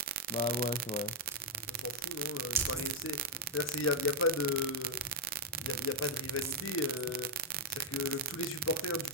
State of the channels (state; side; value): normal; both; correlation 0.02